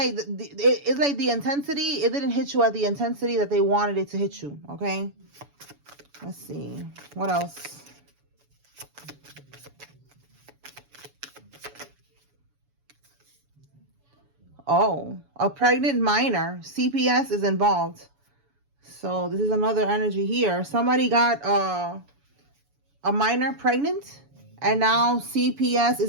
it's like the intensity. It didn't hit you at the intensity that they wanted it to hit you. Okay. Let's see. What else? Oh, a pregnant minor. CPS is involved. So this is another energy here. Somebody got a minor pregnant, and now CPS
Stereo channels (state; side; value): late; left; 7.0 ms